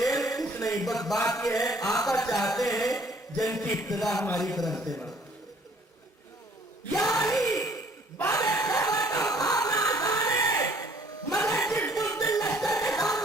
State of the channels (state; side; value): normal; both; correlation 0.58